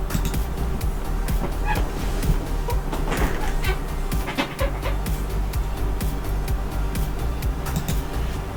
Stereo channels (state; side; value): identical; both; correlation 1.00